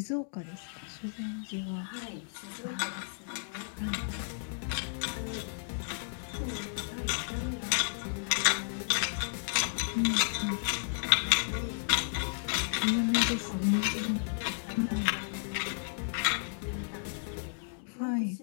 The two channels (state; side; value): silent; right; digital silence